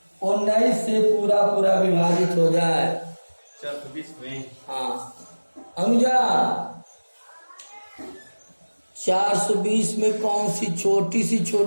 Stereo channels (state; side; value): inverted; both; correlation -1.00